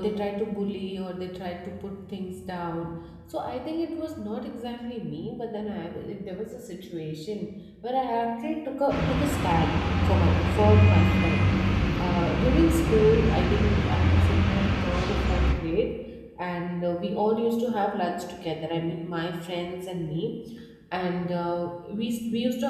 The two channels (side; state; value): both; identical; correlation 1.00